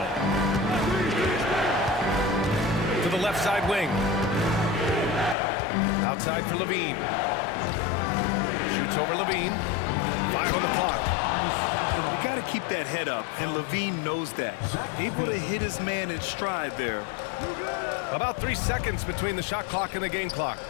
To the left side wing. Outside for Levine. Shoots over Levine. 5 on the clock. You got to keep that head up, and Levine knows that. Able to hit his man in stride there. About 3 seconds between the shot clock and the game clock.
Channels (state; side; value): drops out; right; at 5.4 s